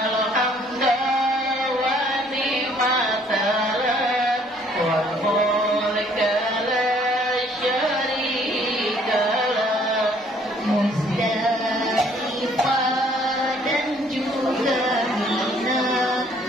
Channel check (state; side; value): normal; both; correlation 0.61